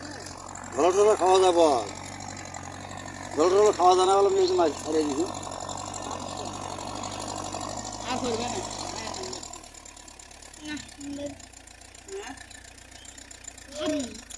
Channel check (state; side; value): identical; both; correlation 1.00